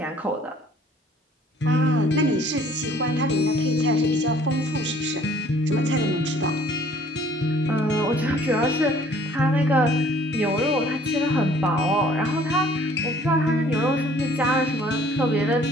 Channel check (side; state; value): both; normal; correlation 0.56